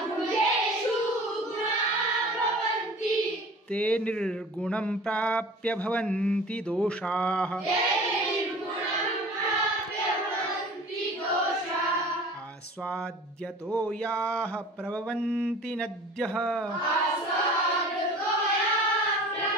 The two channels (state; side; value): normal; both; correlation 0.42